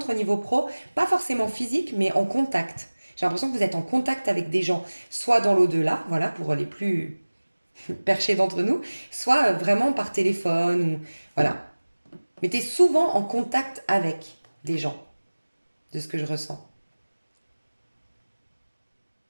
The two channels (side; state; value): both; inverted; correlation -1.00